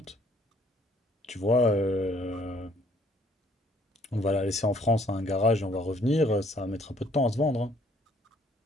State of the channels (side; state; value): both; normal; correlation 0.62